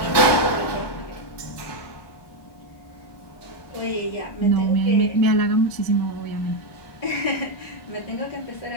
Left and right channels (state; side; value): late; right; 1.2 ms